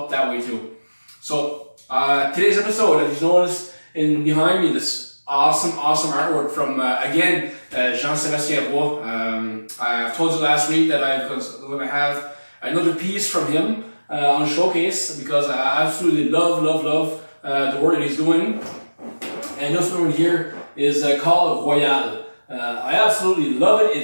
that way too. So today's episode, as you noticed behind me, this awesome artwork from again Jean-Sébastien Roy. I've told you last week that I'm going to have another piece from him on showcase, because I absolutely love the work that he's doing. And this one here is called Royale. I absolutely love it.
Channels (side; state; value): both; inverted; correlation -1.00